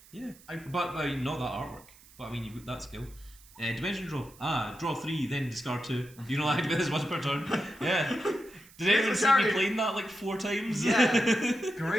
Yeah. But not that artwork. But I mean, you've got that skill. Dimension draw. Draw 3, then discard 2. You can only activate this once per turn. Yeah. Did anyone see me playing that like 4 times? Yeah.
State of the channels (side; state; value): right; noise; hiss, 24 dB below the sound